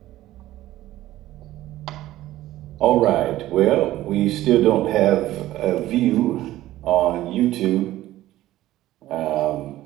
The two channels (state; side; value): quieter; left; 15.1 dB